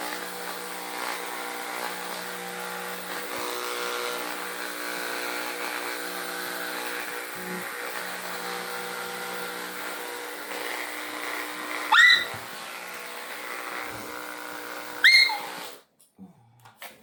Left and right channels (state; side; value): identical; both; correlation 1.00